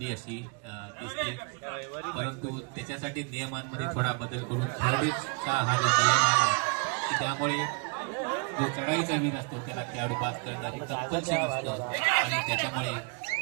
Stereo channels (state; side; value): quieter; left; 34.7 dB